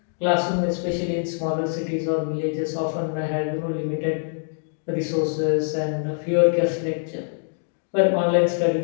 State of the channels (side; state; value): right; silent; digital silence